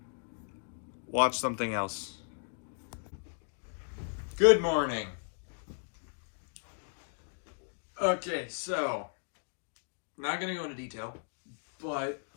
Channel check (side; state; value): right; silent; digital silence